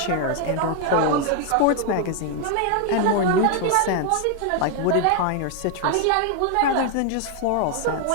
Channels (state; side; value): different; both; correlation 0.00